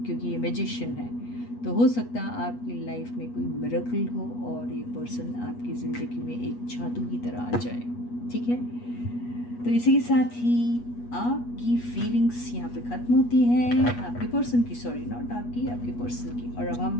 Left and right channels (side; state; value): right; late; 8.3 ms